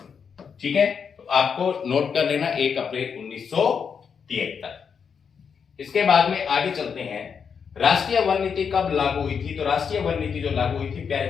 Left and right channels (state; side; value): quieter; right; 6.6 dB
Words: ठीक है, तो आपको नोट कर लेना, 1 अप्रैल 1973। इसके बाद में आगे चलते हैं। राष्ट्रीय वन नीति कब लागू हुई थी? तो राष्ट्रीय वन नीति जो लागू हुई थी प्यारे